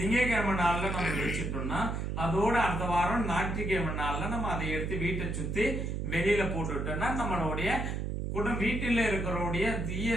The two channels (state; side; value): noise; right; hum, 2 dB below the sound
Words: நாள்ல நம்ம வச்சுட்டோம்னா அதோட அடுத்த வாரம் ஞாயிற்றுக்கிழமை நாள்ல நம்ம அதை எடுத்து வீட்டை சுத்தி வெளியில போட்டுட்டோம்னா நம்மளுடைய வீட்டில இருக்கிறோடைய தீய